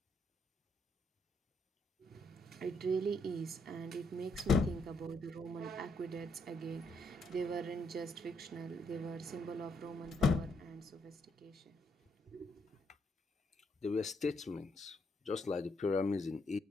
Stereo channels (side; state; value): both; normal; correlation 0.75